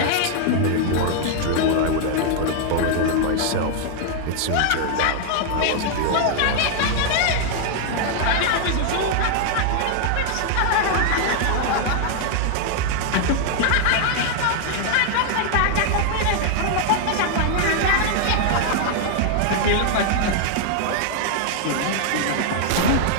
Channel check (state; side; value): different; both; correlation 0.00